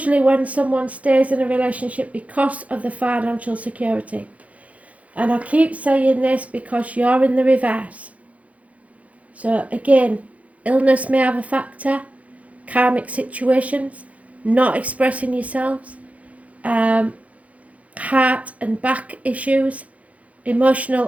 when someone stays in a relationship because of the financial security. And I keep saying this because you're in the reverse. So again, illness may have a factor, karmic situations, not expressing yourselves, heart and back issues,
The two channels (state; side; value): late; left; 0.067 ms